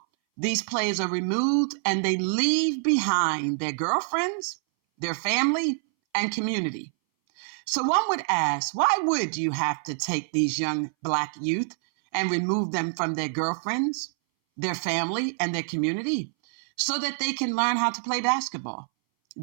"These players are removed and they leave behind their girlfriends, their family, and community." So one would ask, why would you have to take these young Black youth and remove them from their girlfriends, their family, and their community so that they can learn how to play basketball?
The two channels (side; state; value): left; silent; 60 dB below the other